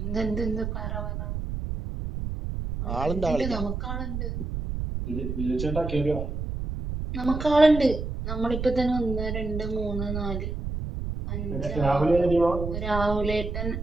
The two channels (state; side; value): noise; right; rumble, 4 dB below the sound